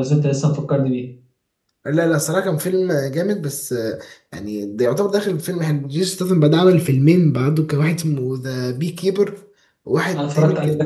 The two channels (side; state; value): both; identical; correlation 1.00